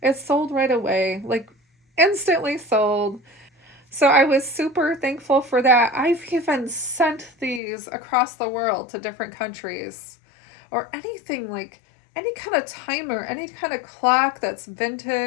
It's sold right away, like instantly sold. So I was super thankful for that. I've even sent these across the world to different countries. Or anything like any kind of timer, any kind of clock that's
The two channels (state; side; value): drops out; right; at 7.6 s